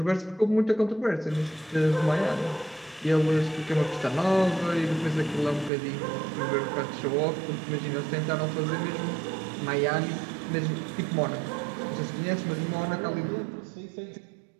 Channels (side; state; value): left; drops out; at 5.7 s